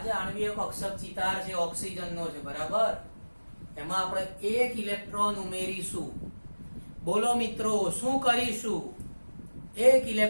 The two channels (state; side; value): inverted; both; correlation -1.00